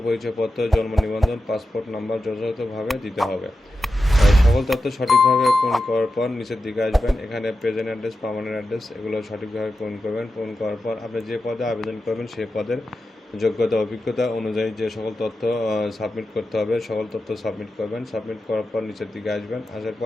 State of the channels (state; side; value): normal; both; correlation 0.91